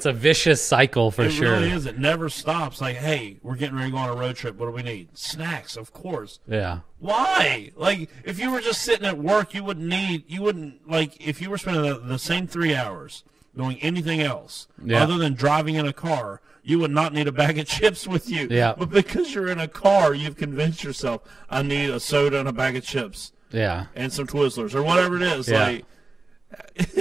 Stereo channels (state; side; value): quieter; left; 3.5 dB